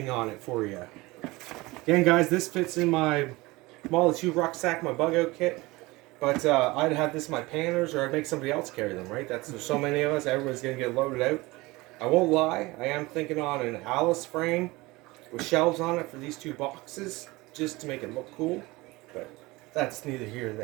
on it for you. Again, guys, this fits in my Model 2 rucksack, my bug out kit. But I'd have this in my panners, or I'd make somebody else carry them, right? There's so many of us, everybody's going to get loaded out. I won't lie, I am thinking on an Alice frame with shelves on it for these two boxes, just to make it look cool. But that's neither here nor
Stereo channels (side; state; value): left; quieter; 21.8 dB